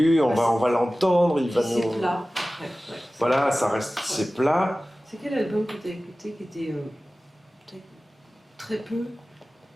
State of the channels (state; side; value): normal; both; correlation 0.97